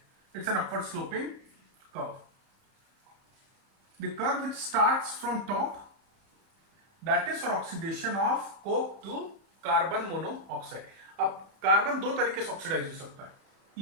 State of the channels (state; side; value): late; left; 31 ms